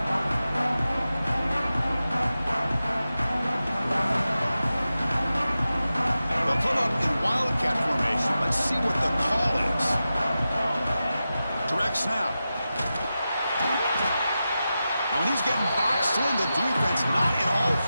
Wildcat formation. Let's see what the call is. Direct snap. Now when he's getting boxed in, the defense not at all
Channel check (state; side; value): inverted; both; correlation -0.92